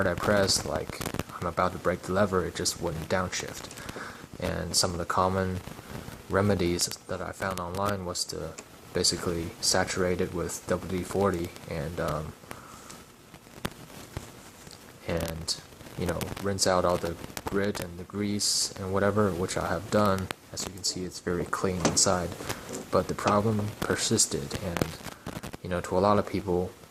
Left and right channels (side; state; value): both; identical; correlation 1.00